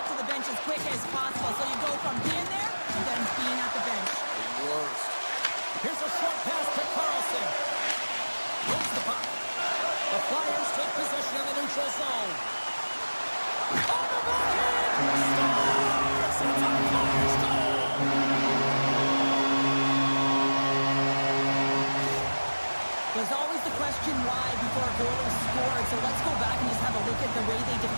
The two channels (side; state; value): both; inverted; correlation -1.00